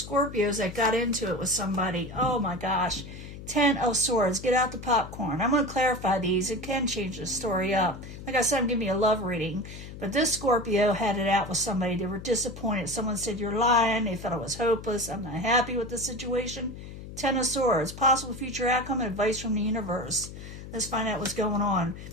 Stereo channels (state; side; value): noise; left; hum, 12 dB below the sound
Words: that got into it with somebody. Oh my gosh. Ten of Swords. Get out the popcorn. I'm going to clarify these. It can change the story up. Like I said, I'm giving you a love reading. But this Scorpio had it out with somebody. They were disappointed. Someone said, you're lying. They felt it was hopeless. I'm not happy with the situation. Ten of Swords. Possible future outcome and advice from the universe. Let's find out what's going on.